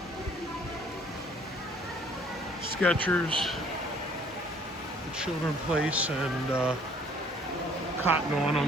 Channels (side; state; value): both; normal; correlation 0.58